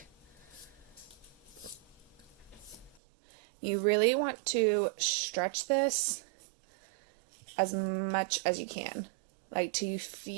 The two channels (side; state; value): left; drops out; at 3.0 s